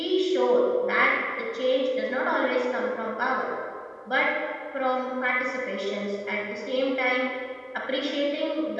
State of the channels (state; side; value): identical; both; correlation 1.00